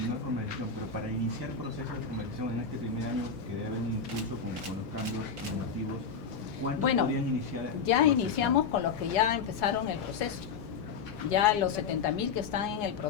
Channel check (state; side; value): quieter; right; 6.0 dB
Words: formalización, pero para iniciar procesos de formalización en este primer año, que debe haber un impulso con los cambios normativos, ¿cuántos podrían iniciar? Ya iniciamos con los que ya empezaron el proceso. Ya los 70.000 que están en el